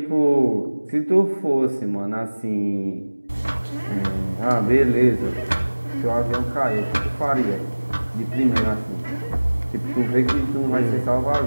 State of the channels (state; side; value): inverted; both; correlation -1.00